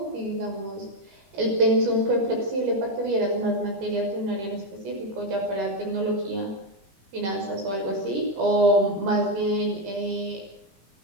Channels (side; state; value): left; late; 15 ms